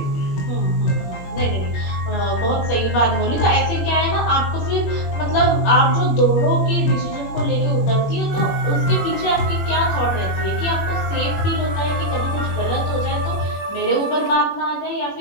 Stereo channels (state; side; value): late; right; 21 ms